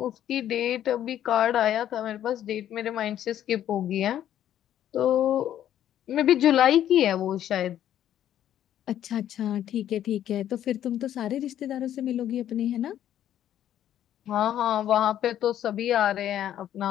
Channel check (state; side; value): quieter; right; 11.2 dB